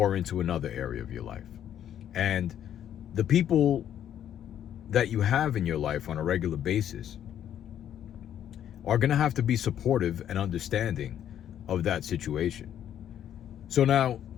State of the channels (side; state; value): right; quieter; 10.2 dB